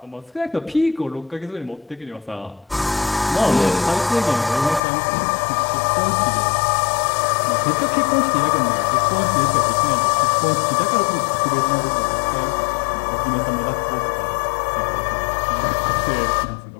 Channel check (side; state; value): right; drops out; at 4.8 s